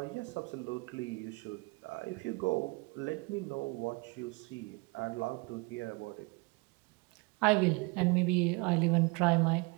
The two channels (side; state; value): left; quieter; 27.6 dB